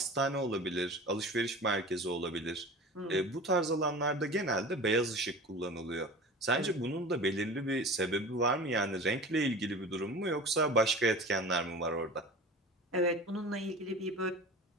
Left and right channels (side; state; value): both; normal; correlation 0.36